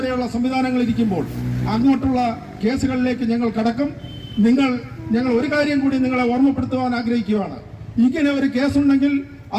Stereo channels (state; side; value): identical; both; correlation 1.00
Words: സംവിധാനങ്ങൾ ഇരിക്കുമ്പോൾ അങ്ങോട്ടുള്ള കേസുകളിലേക്ക് ഞങ്ങൾ കടക്കും. ഞങ്ങൾ ഒരു കാര്യം കൂടി നിങ്ങളെ ഓർമ്മപ്പെടുത്തുവാൻ ആഗ്രഹിക്കുകയാണ്. ഇങ്ങനെ ഒരു കേസുണ്ടെങ്കിൽ